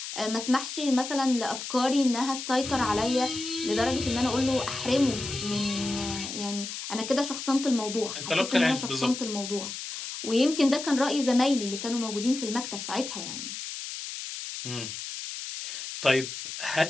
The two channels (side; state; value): left; noise; hiss, 7 dB below the sound